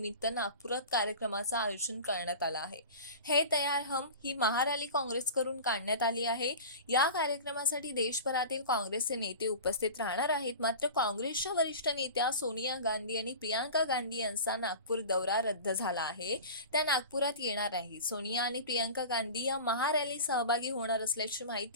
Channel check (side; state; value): both; inverted; correlation -0.34